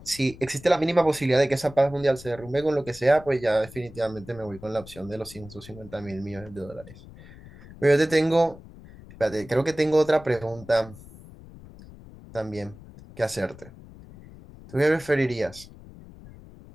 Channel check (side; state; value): left; noise; rumble, 19 dB below the sound